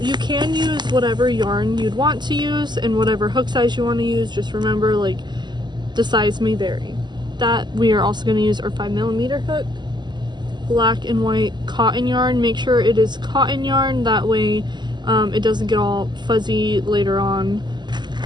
can use whatever yarn you'd want to use and whatever hook size you want to use. Just remember, like, the size may vary. That we are also going to use our 5mm hook. Black and white cotton yarn. Make sure it is cotton yarn, that way it doesn't get all fuzzy later on.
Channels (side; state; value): left; late; 0.21 ms